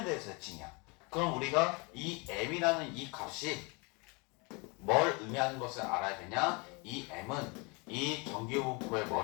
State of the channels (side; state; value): right; quieter; 29.8 dB